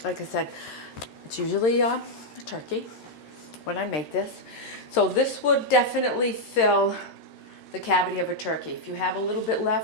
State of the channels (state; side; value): late; right; 13 ms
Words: Like I said, it's usually a turkey when I make this. So this would definitely fill the cavity of a turkey. If you have a little bit